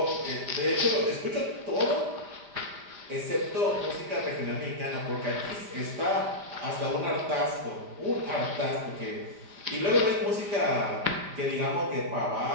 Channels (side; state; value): left; late; 4.9 ms